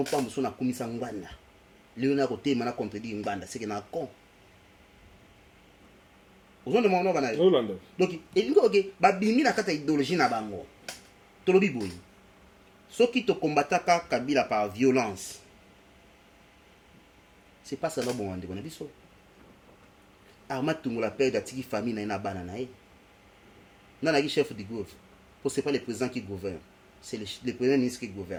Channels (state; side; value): identical; both; correlation 1.00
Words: pa mso na kumisa ngwanda leo na kote mana contredire ngwanda c'est que na con ozonde mona bana donc elingo ok babimi na kata idéologie na bango tolobi boyi soki to combataka Kabila par violence c'est pas ça bon ande kona biso Arma Tungola père d'atiki famille na bana na Nana qui chef du gouvernement. Pour c'est pas le président qui gouverne, c'est le premier ministre qui